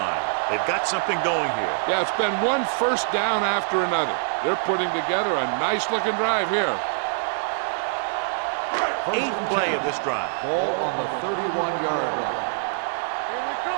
They've got something going here. Yeah, it's been one first down after another. They're putting together a nice-looking drive here. 8th play of this drive. Ball on the 31-yard line. Here we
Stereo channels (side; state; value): left; silent; digital silence